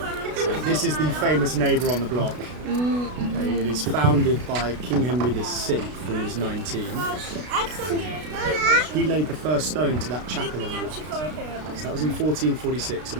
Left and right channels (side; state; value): left; late; 33 ms